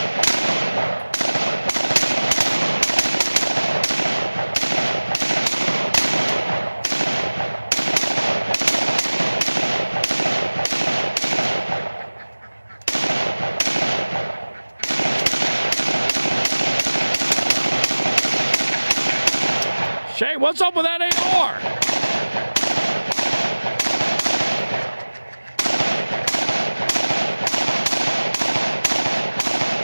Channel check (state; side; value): inverted; both; correlation -1.00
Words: Shay, what's up with that AR?